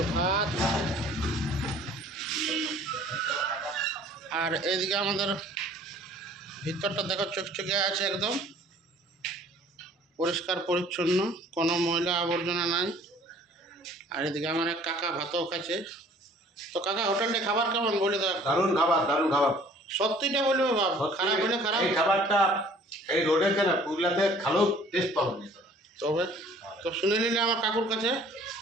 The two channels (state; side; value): normal; both; correlation 0.53